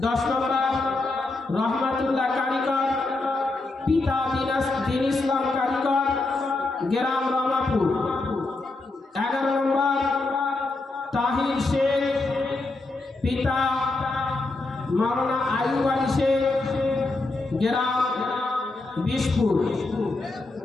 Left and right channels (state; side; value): quieter; right; 3.2 dB